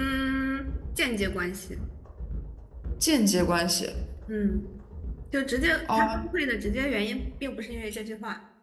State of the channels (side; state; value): both; identical; correlation 1.00